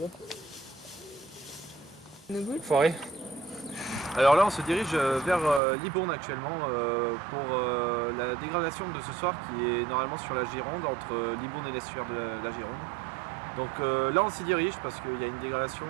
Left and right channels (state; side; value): drops out; left; at 5.6 s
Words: Foiré. Alors là, on se dirige vers Libourne actuellement pour la dégradation de ce soir qui est normalement sur la Gironde, entre Libourne et l'estuaire de la Gironde. Donc là, on s'y dirige parce qu'il y a une dégradation